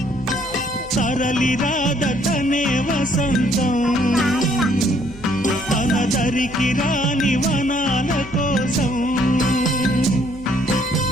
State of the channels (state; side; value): noise; right; hum, 18 dB below the sound